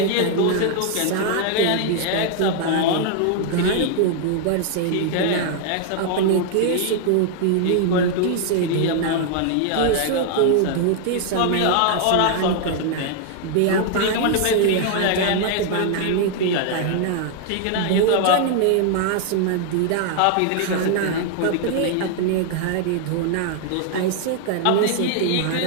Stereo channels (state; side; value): different; both; correlation 0.00